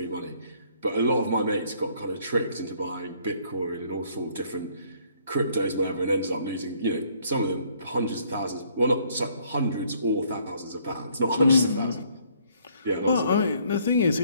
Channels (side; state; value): both; inverted; correlation -0.64